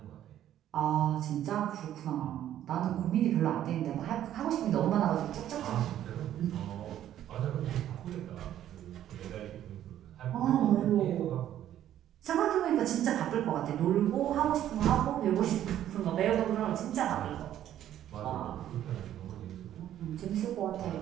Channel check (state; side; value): quieter; left; 11.6 dB